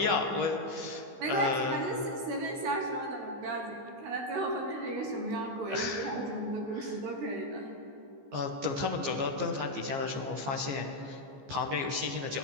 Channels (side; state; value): left; late; 15 ms